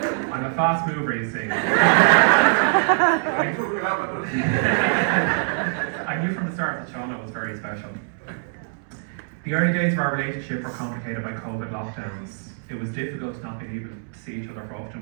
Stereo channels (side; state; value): left; silent; digital silence